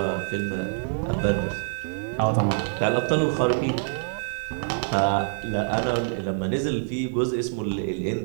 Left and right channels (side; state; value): left; silent; digital silence